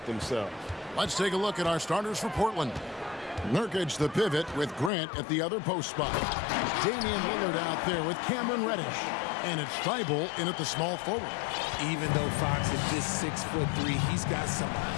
themselves. Let's take a look at our starters for Portland. Nurkic, the pivot, with Grant at the other post spot. Damian Lillard out there with Cameron Reddish. And it's Thibault in at the small forward. Even though Fox is just 6'3", he's got some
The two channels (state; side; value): drops out; right; at 4.9 s